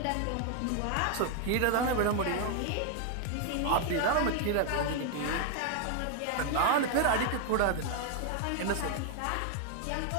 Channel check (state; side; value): different; both; correlation 0.00